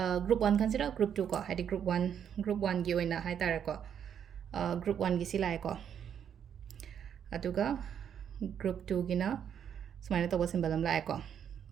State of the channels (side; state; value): left; quieter; 8.6 dB